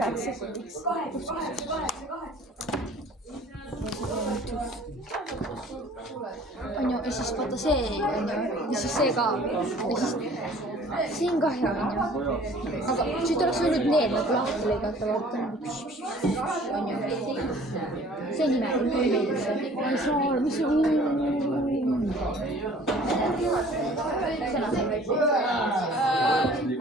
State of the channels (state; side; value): normal; both; correlation 0.51